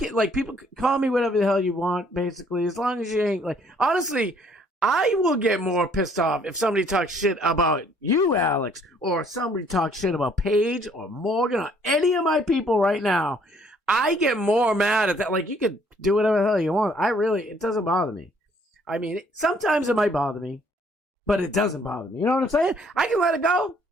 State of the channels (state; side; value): normal; both; correlation 0.62